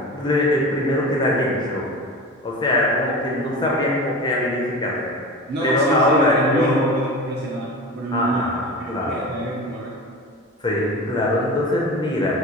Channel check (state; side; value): normal; both; correlation 0.32